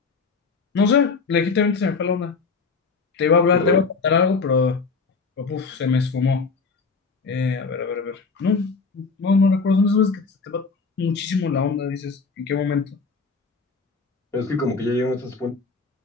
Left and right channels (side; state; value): right; quieter; 4.7 dB